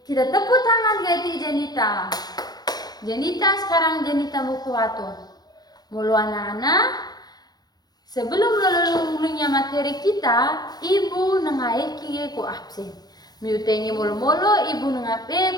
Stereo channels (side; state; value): right; late; 0.19 ms